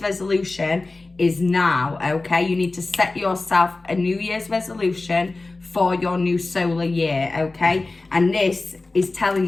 is now, okay? You need to set yourself a New Year's resolution for your new solar year, okay? And this is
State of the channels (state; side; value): quieter; right; 3.3 dB